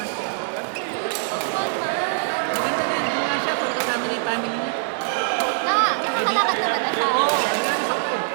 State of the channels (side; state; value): left; silent; digital silence